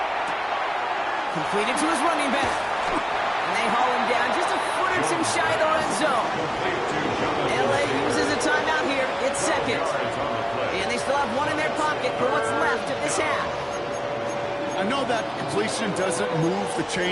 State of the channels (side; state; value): both; identical; correlation 1.00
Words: Completed to his running back. And they haul him down just a foot or 2 shy of the red zone. LA uses a timeout here. It's 2nd. And they still have 1 in their pocket for what's left of this half. I know that completion doesn't move the